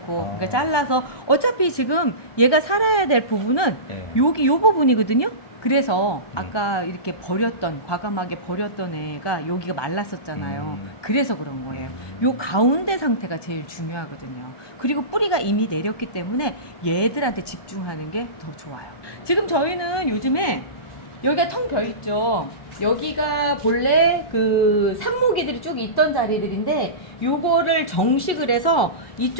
아. 그러니까 잘라서 어차피 지금 얘가 살아야 될 부분은 네. 여기 요 부분이거든요. 그래서 아까 이렇게 버렸던, 과감하게 버렸던 애가 여기가 말랐었잖아요. 그래서 그런 거예요. 요 가운데 상태가 제일 중요하거든요. 그리고 뿌리가 이미 내렸기 때문에 얘들한테 집중하는 게 더 좋아요. 지금 저희는 요즘에 여기가 텅 벼 있죠. 여기가 본래 그 삽목이들이 쭉 있던 자리들인데 요거를 정식을 해서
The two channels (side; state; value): right; late; 1.2 ms